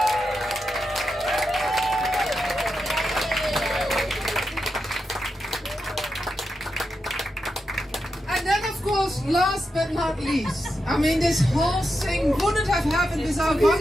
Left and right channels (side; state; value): both; normal; correlation 0.87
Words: Last but not least, I mean, this whole thing wouldn't have happened without one